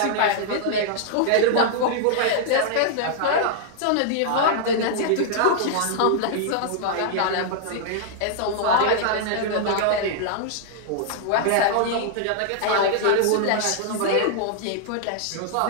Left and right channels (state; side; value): different; both; correlation -0.01